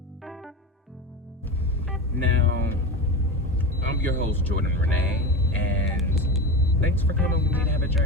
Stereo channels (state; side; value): normal; both; correlation 0.25